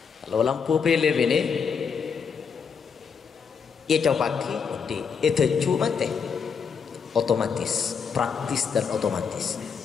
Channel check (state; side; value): quieter; right; 6.2 dB